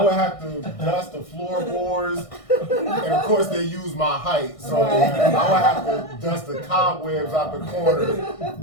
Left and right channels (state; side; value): late; right; 1.6 ms